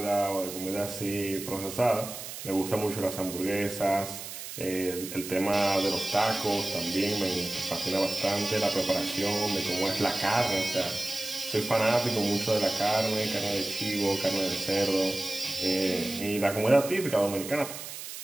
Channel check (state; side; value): noise; right; hiss, 10 dB below the sound